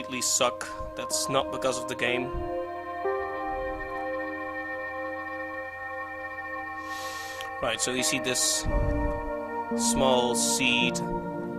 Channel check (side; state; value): both; identical; correlation 1.00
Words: suck, that's not because of the game. Right, so you see this small seed